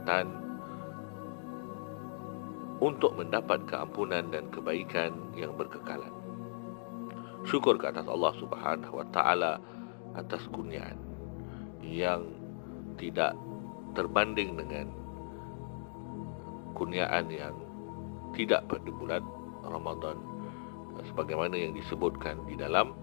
untuk mendapat keampunan dan kebaikan yang berkekalan. Syukur ke atas Allah subhanahu wa ta'ala atas kurniaan yang tidak terbanding dengan kurniaan yang tidak pada bulan Ramadan, sebagaimana yang disebutkan di dalam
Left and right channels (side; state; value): right; silent; digital silence